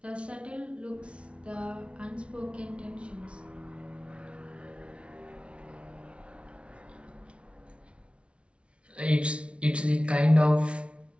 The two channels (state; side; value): late; left; 0.060 ms